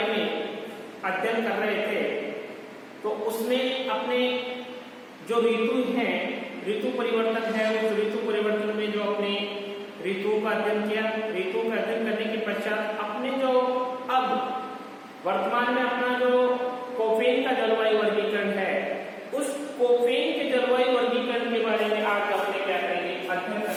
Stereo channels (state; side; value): identical; both; correlation 1.00